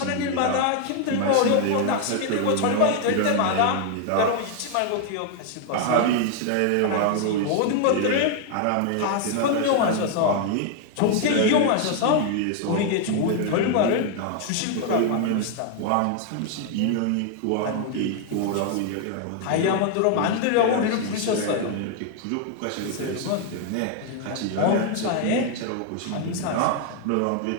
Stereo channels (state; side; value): different; both; correlation 0.00